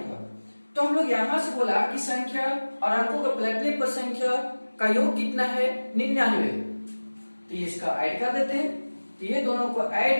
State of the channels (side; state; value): both; inverted; correlation -1.00